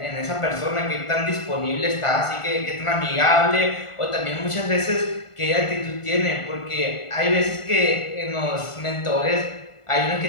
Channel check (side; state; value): right; late; 1.5 ms